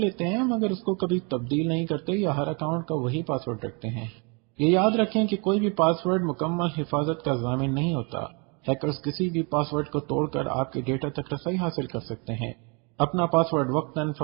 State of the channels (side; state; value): left; quieter; 32.6 dB